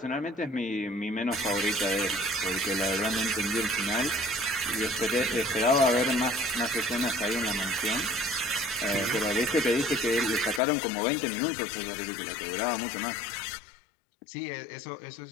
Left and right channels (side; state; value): right; drops out; at 10.6 s